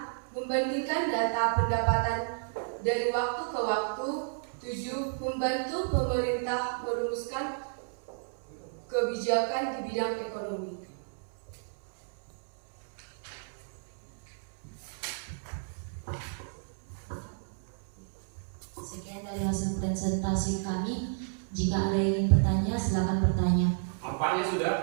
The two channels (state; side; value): silent; left; 57 dB below the other